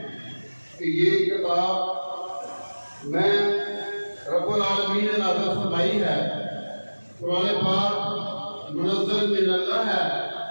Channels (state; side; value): inverted; both; correlation -1.00